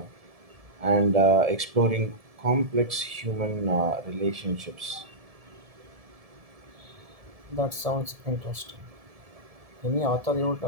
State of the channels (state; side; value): late; left; 1.7 ms